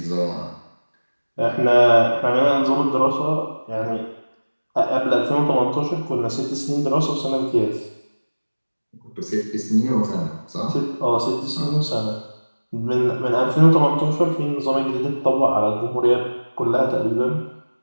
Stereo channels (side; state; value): both; inverted; correlation -1.00